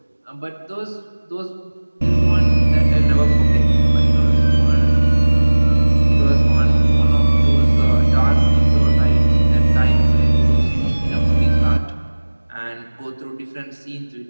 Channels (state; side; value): inverted; both; correlation -1.00